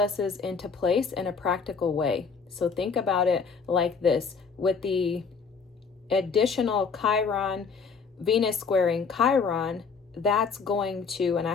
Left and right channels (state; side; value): quieter; right; 5.4 dB